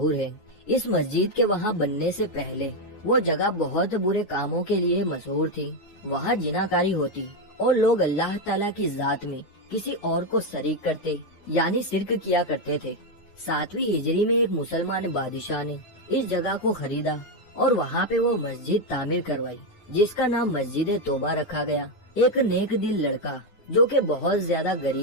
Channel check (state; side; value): late; right; 9.4 ms